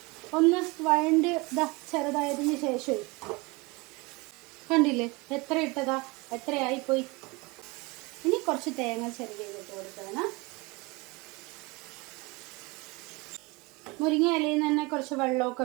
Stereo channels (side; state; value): left; quieter; 25.8 dB